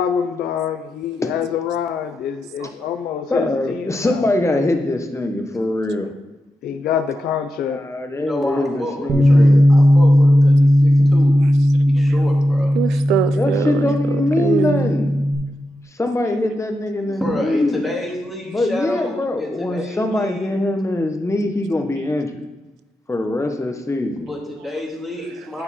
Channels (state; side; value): normal; both; correlation 0.88